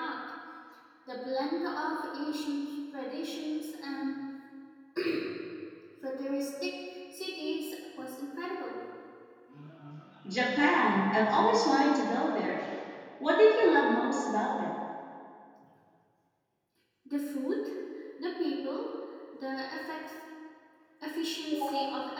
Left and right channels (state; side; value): identical; both; correlation 1.00